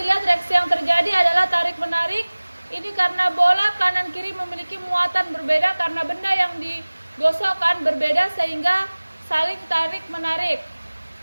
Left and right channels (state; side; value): inverted; both; correlation -1.00